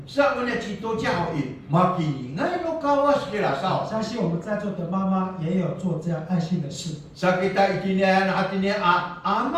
Sa mana cito jauh makini ngai no kawas kira sao. 相信我们在座的妈妈也有做这样爱心的事。 Sa kita itinian hatinya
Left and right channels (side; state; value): both; identical; correlation 1.00